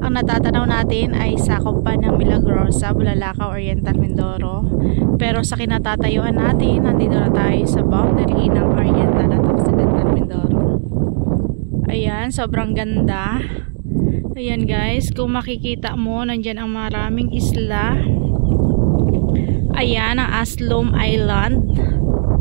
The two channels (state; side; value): silent; left; 64 dB below the other